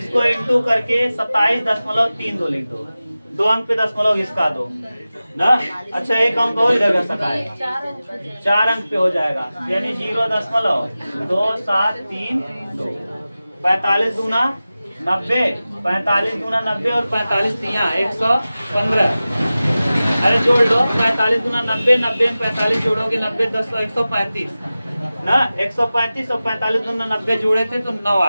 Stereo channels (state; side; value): inverted; both; correlation -0.96